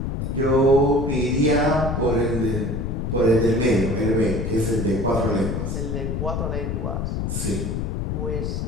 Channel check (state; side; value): noise; left; rumble, 2 dB below the sound